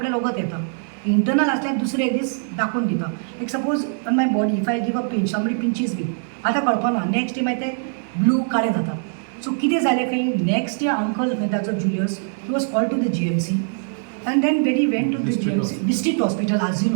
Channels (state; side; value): silent; left; 64 dB below the other